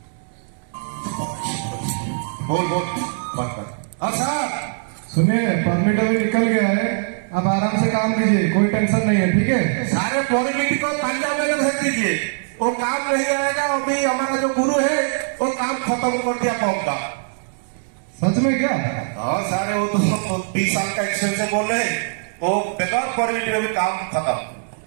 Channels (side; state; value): left; silent; 65 dB below the other